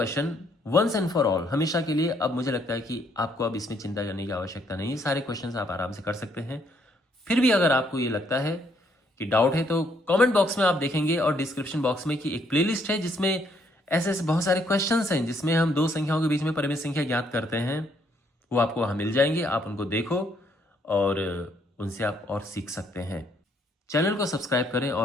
once and for all, हमेशा के लिए, अब मुझे लगता है कि आपको अब इसमें चिंता करने की आवश्यकता नहीं है। सारे क्वेश्चंस आप आराम से कर सकते हैं। फिर भी अगर आपको ये लगता है कि डाउट है, तो कमेंट बॉक्स में आप देखेंगे, और डिस्क्रिप्शन बॉक्स में कि एक प्लेलिस्ट है जिसमें ऐसे ऐसे बहुत सारे क्वेश्चंस हैं जिसमें हम 2 संख्याओं के बीच में परिमेय संख्या ज्ञात करते हैं। वो आपको वहां मिल जाएंगे, आप उनको देखो और उनसे आप और सीख सकते हैं। चैनल को सब्सक्राइब करें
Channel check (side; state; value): both; normal; correlation 0.70